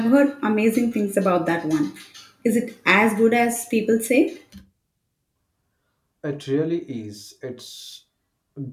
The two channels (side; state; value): both; identical; correlation 1.00